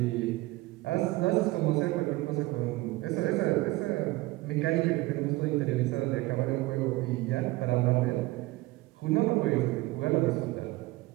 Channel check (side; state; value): left; quieter; 19.9 dB